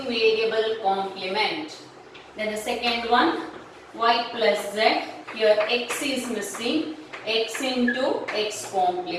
variable complement. Then the second one, y plus z. Here x is missing. X into x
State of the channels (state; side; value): identical; both; correlation 1.00